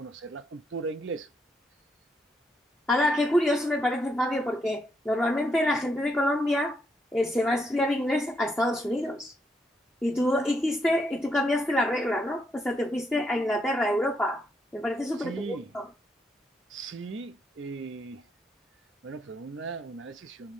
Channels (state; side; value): normal; both; correlation 0.78